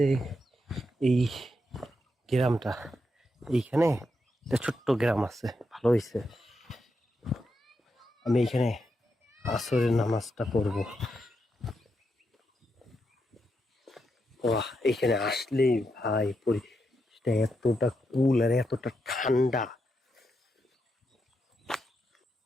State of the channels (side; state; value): both; normal; correlation 0.83